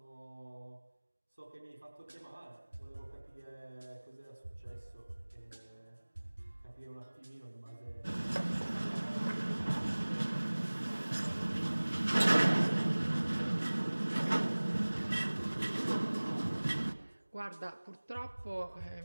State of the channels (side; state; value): both; inverted; correlation -1.00